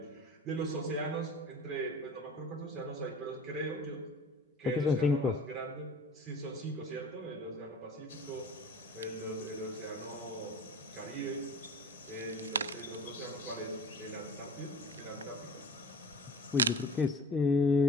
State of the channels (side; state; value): both; normal; correlation 0.39